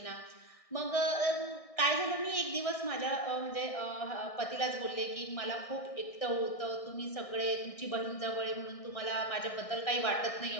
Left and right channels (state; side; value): late; right; 1.6 ms